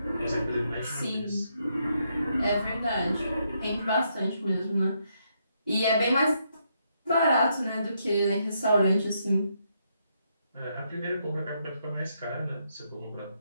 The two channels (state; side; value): inverted; both; correlation -0.77